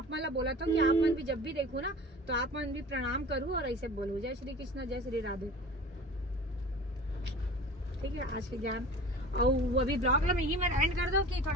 मतलब बोला था कि आप मन भी जब भी देखो ना तो आप मन भी प्रणाम करूँ और ऐसे बोलो जय श्री कृष्ण जय श्री राधे, ठीक है। आज के ज्ञान और वो अभी ब्लॉग में यही मैं एंड कर दूं कि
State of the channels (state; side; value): normal; both; correlation 0.39